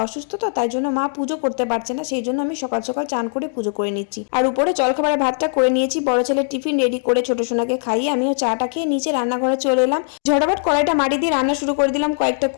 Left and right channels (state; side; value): silent; right; digital silence